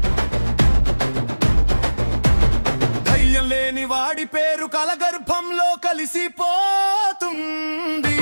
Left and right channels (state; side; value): inverted; both; correlation -1.00